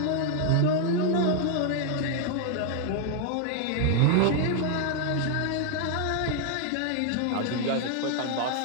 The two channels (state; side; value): different; both; correlation 0.00